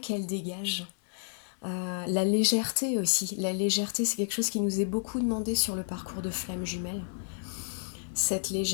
dégagent. La légèreté aussi. La légèreté, c'est quelque chose qui nous est beaucoup demandé sur le parcours de flamme jumelle. Cette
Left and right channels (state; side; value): silent; right; digital silence